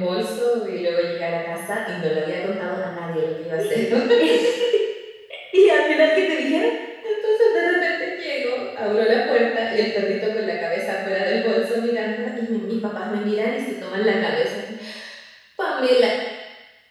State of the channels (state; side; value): identical; both; correlation 1.00